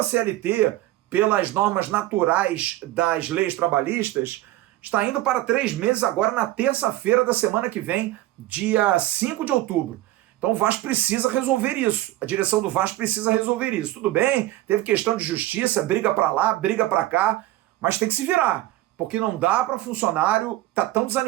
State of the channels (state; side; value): quieter; left; 16.0 dB